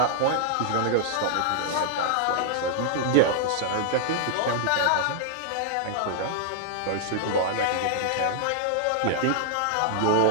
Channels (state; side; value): different; both; correlation -0.01